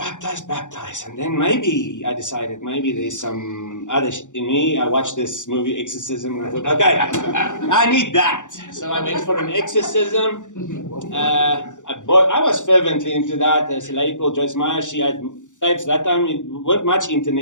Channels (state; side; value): late; right; 0.86 ms